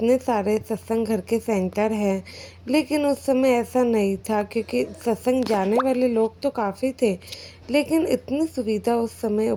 सारे सत्संग घर के सेंटर हैं, लेकिन उस समय ऐसा नहीं था, क्योंकि सत्संग जाने वाले लोग तो काफ़ी थे, लेकिन इतनी सुविधा उस समय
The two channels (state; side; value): identical; both; correlation 1.00